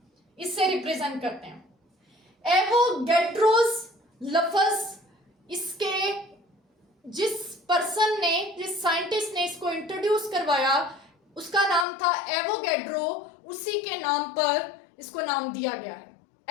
इससे रिप्रेजेंट करते हैं। एवोगैड्रोस लफ्ज इसके जिस पर्सन ने, जिस साइंटिस्ट ने इसको इंट्रोड्यूस करवाया उसका नाम था एवोगैड्रो। उसी के नाम पर इसको नाम दिया गया है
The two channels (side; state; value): right; drops out; at 11.9 s